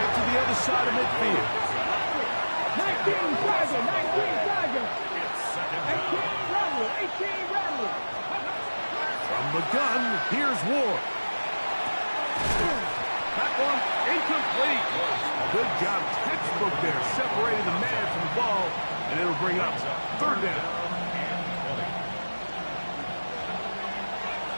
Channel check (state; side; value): inverted; both; correlation -1.00